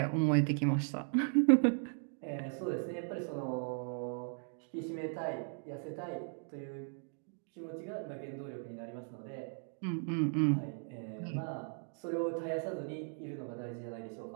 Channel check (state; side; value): silent; left; 53 dB below the other